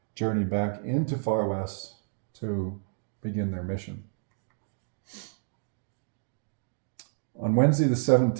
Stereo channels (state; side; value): silent; left; digital silence